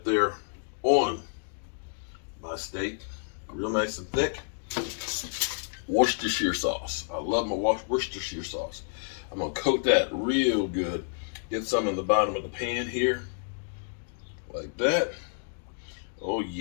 there on my steak, real nice and thick. Worcestershire sauce. I love my Worcestershire sauce. I'm going to coat that real good. Get some in the bottom of the pan here, like that. Oh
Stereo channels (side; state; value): right; silent; digital silence